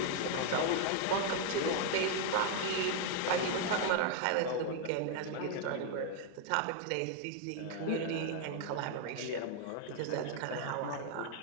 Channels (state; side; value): different; both; correlation 0.00